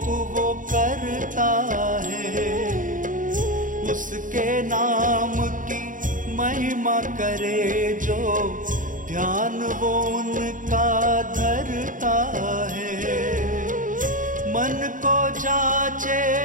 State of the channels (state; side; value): late; left; 0.38 ms